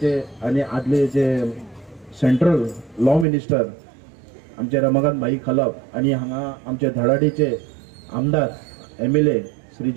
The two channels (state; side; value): drops out; left; at 3.2 s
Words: आणि आदले जे सेंट्रल लॉ मिनिस्टर आमचे रमाकांत भाई खलप आणि हांगा आमचे धडाडीचे आमदार MLA